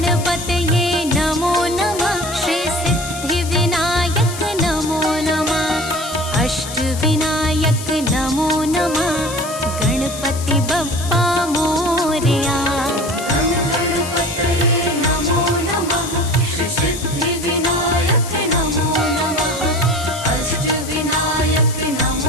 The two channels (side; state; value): left; noise; hiss, 11 dB below the sound